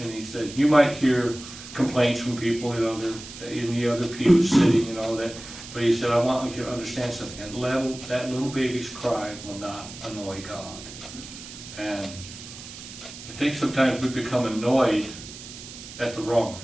And he said, you might hear complaints from people, they're in the other pew sitting, but he said, I want you to understand something, that little baby's cry will not annoy God. And I think sometimes we become annoyed at the wrong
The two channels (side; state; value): right; noise; hiss, 14 dB below the sound